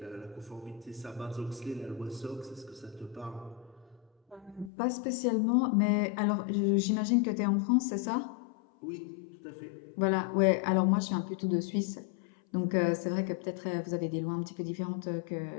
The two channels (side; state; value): right; drops out; at 4.7 s